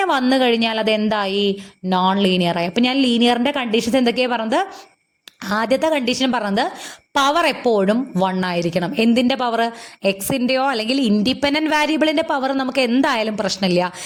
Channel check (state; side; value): identical; both; correlation 1.00